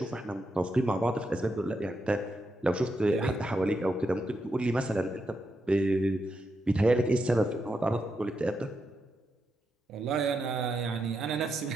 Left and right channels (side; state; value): both; normal; correlation 0.84